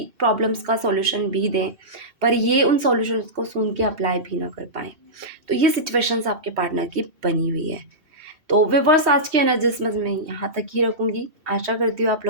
प्रॉब्लम्स का सॉल्यूशन भी दें, पर ये उन सॉल्यूशंस को सुन के अप्लाई भी ना कर पाएँ। तो ये सिचुएशंस आपके पार्टनर की बनी हुई है। तो व्यूअर्स, आज की एनालिसिस मैं यहाँ तक ही रखूँगी। आशा करती हूँ आप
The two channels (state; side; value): late; left; 2.7 ms